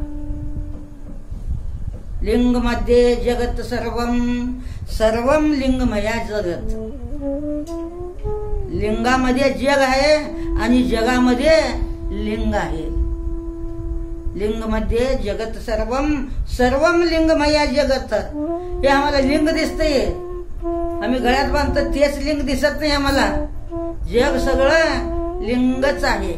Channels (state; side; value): identical; both; correlation 1.00